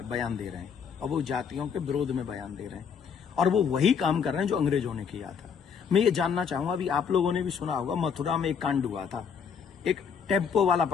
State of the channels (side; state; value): right; quieter; 6.8 dB